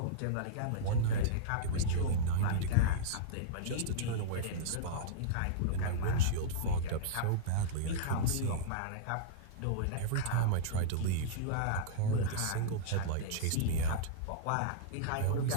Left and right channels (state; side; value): different; both; correlation -0.03